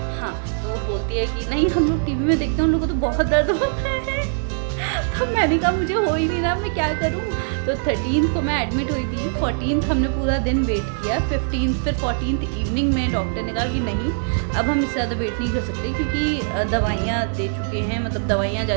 हाँ, तो वो बोलती है कि नहीं हम लोग टीवी में देखते हैं, उन लोगों को तो बहुत दर्द होता है। तो मैंने कहा मुझे हो ही नहीं रहा, मैं क्या करूँ। तो 13 को मैं एडमिट हुई थी, 14 हमने पूरा दिन वेट किया, 15 फिर 14 इवनिंग में डॉक्टर ने कहा कि नहीं अब हम इससे ज़्यादा वेट नहीं कर सकते, क्योंकि दवाइयाँ दे चुके हैं, मतलब दवाइयाँ जा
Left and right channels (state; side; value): silent; left; 62 dB below the other